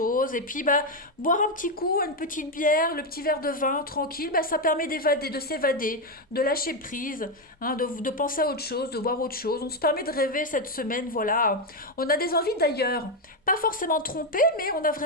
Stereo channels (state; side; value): normal; both; correlation 0.07